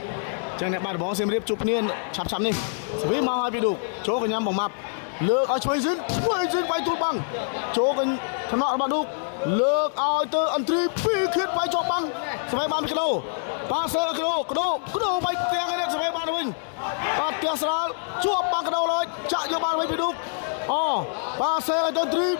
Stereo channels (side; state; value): right; silent; 62 dB below the other